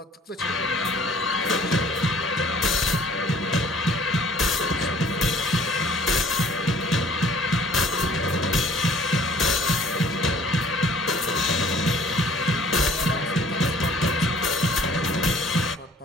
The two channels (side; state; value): both; normal; correlation 0.54